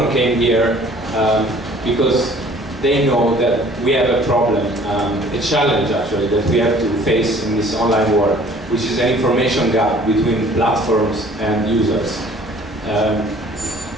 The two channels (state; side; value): normal; both; correlation 0.53